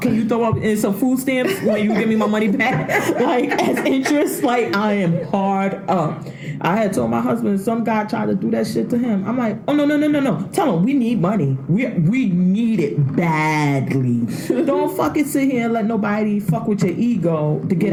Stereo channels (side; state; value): both; identical; correlation 1.00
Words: Can you throw up in some food stamps when you give me my money back? Like, as interest, like, I am hard up. I had told my husband, some guy tried to do that shit to him. I'm like, oh, no. Tell him we need money. We need it badly. Don't fucking sit here and let nobody fuck with your ego to get